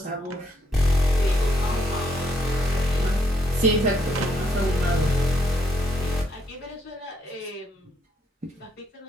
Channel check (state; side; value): normal; both; correlation 0.74